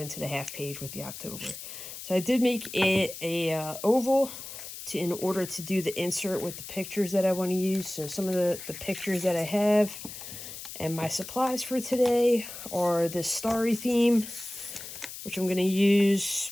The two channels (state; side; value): noise; left; hiss, 11 dB below the sound